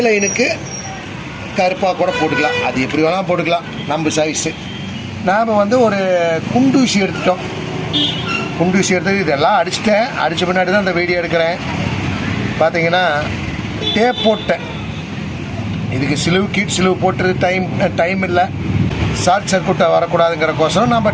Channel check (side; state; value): both; identical; correlation 1.00